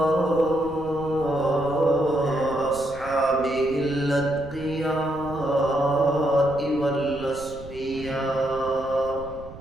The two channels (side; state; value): right; noise; rumble, 16 dB below the sound